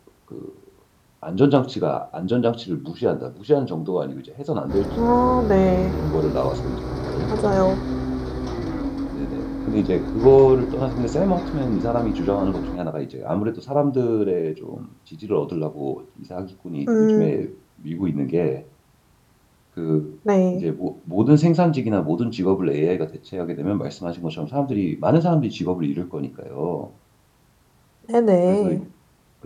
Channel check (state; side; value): identical; both; correlation 1.00